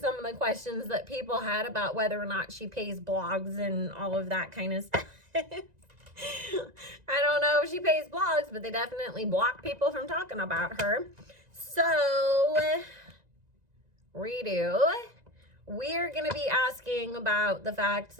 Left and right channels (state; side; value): late; left; 1.9 ms